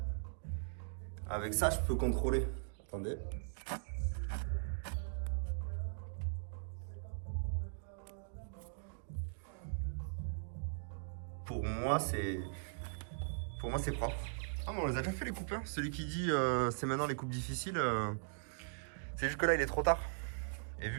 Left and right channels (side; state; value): left; silent; digital silence